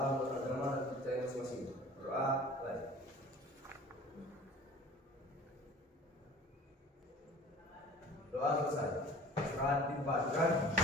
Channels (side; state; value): both; normal; correlation 0.44